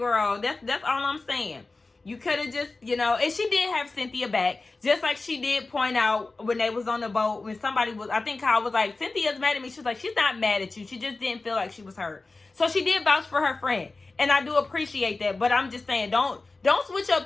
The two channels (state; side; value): quieter; right; 3.5 dB